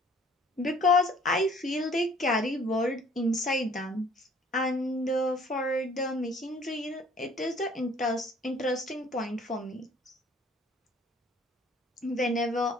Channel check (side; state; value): both; normal; correlation 0.56